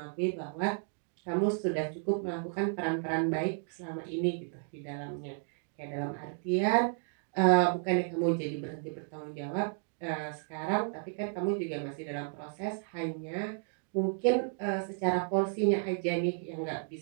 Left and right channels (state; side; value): silent; left; 56 dB below the other